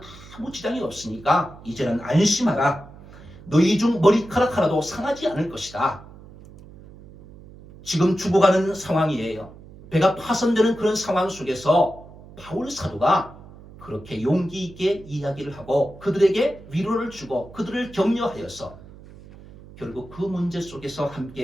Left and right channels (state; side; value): noise; right; hum, 19 dB below the sound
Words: 아무 지장이 없으니까 이제는 안심하라. 너희 중 머리카락 하나도 상하지 않을 것이다. 지금 죽어가는 상황이에요. 배가 파손되는 그런 상황 속에서 바울 사도가 그렇게 용기 있게 이야기를 하고 그들에게 위로를 주고 그들을 격려하여서 결국 그 문제 속에서